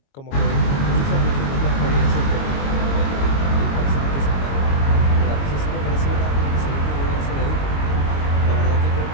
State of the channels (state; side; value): late; right; 22 ms